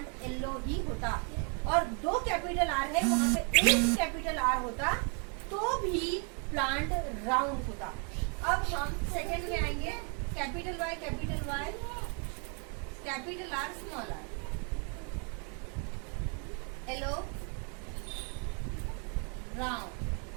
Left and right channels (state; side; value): quieter; left; 38.6 dB